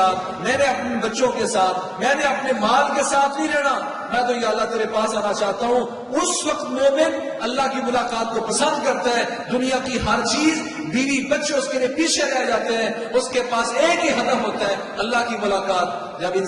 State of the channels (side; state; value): both; identical; correlation 1.00